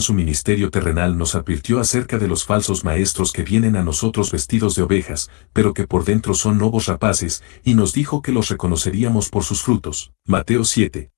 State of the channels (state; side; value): quieter; right; 34.9 dB